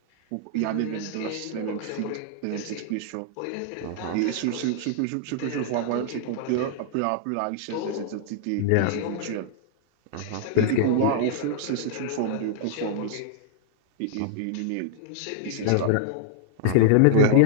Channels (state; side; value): different; both; correlation -0.01